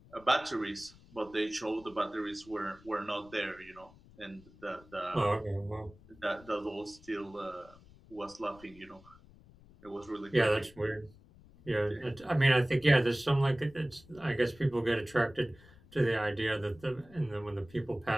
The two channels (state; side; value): noise; left; rumble, 24 dB below the sound